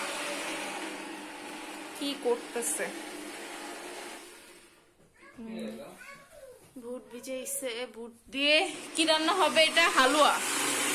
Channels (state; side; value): identical; both; correlation 1.00